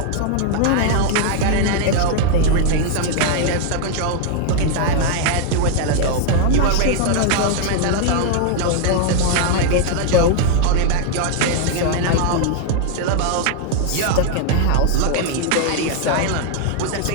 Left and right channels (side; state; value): both; different; correlation 0.00